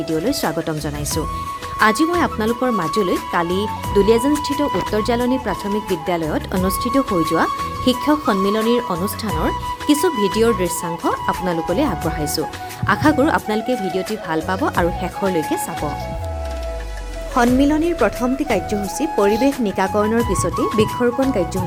স্বাগতম জনাইছোঁ। আজি মই আপোনালোকৰ মাজলৈ কালি দুলীয়াজানস্থিত উত্তৰ জালনী প্ৰাথমিক বিদ্যালয়ত অনুষ্ঠিত হৈ যোৱা শিক্ষক সন্মিলনীৰ অনুষ্ঠানৰ কিছু ভিডিঅ'ৰ দৃশ্যাংশ আপোনালোকলৈ আগবঢ়াইছোঁ। আশা কৰোঁ আপোনালোকে ভিডিঅ'টি ভাল পাব আৰু শেষৰলৈকে চাব। সন্মিলনীৰ প্ৰথমটি কাৰ্যসূচী পৰিৱেশ নিকাকৰণৰ পিছতেই বৃক্ষৰোপণ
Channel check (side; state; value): both; identical; correlation 1.00